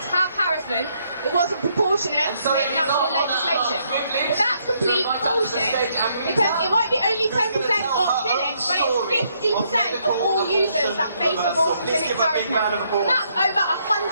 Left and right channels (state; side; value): inverted; both; correlation -0.72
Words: have harassment, it wasn't proportionate to make national legislation. But that's complete bullshit, because it might be only 10% of clinics, but it's 50% of all users that face abortion clinic harassment. And that's over